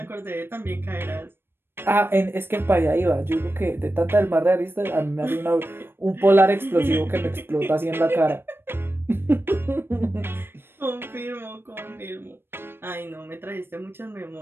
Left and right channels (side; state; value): left; late; 0.11 ms